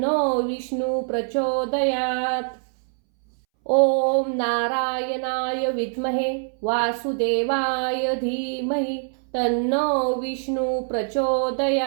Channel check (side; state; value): left; silent; 63 dB below the other